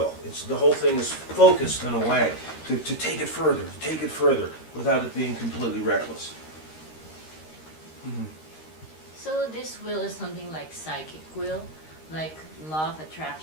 The whole thing is focused in a way to take it further, without it being completely reckless. So this will is something like psychic will, like law of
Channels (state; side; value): late; right; 13 ms